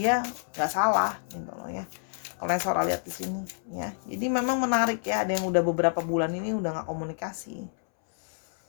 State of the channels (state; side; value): silent; right; 59 dB below the other